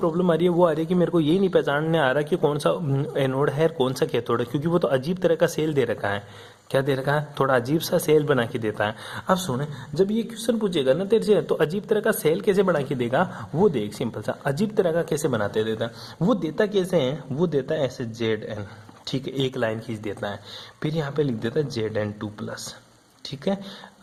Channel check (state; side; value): identical; both; correlation 1.00